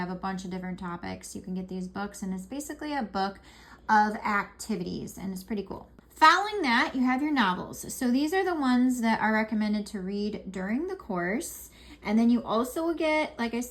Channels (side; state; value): both; identical; correlation 1.00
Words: a bunch of different topics. You can get these books, and it's basically a book of activities, and it's pretty cool. Following that, you have your novels. So these are the ones that are recommended to read during the course. And then you also will get, like I